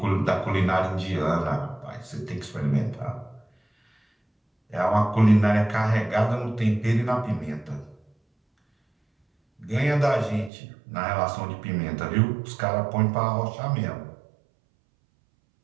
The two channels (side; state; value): left; drops out; at 10.5 s